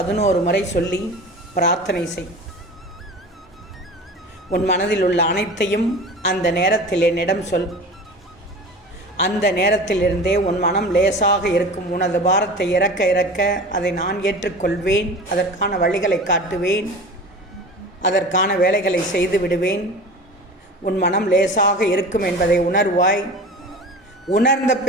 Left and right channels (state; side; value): normal; both; correlation 0.36